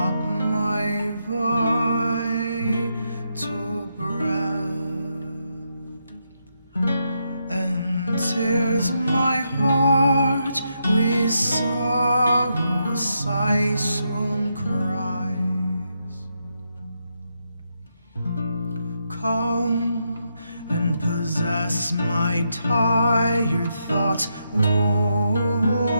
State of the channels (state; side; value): inverted; both; correlation -0.81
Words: my vital breath, and tears my heart with sorrow, sighs, swoon cries. Come and possess my tired thoughts,